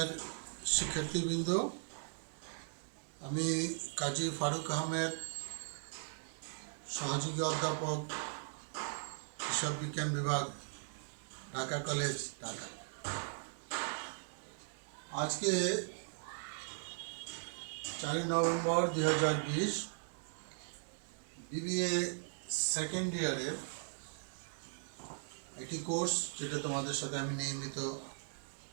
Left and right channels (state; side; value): silent; left; digital silence